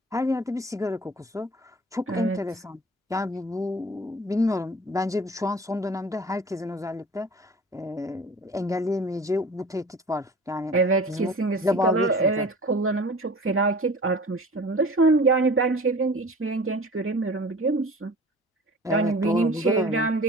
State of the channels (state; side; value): normal; both; correlation 0.42